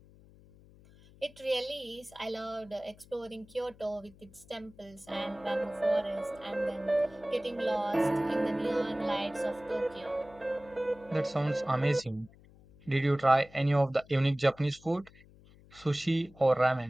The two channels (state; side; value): noise; left; hum, 24 dB below the sound